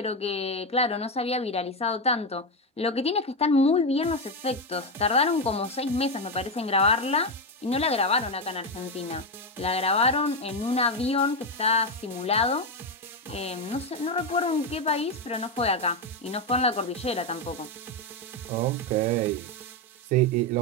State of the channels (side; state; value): both; normal; correlation 0.09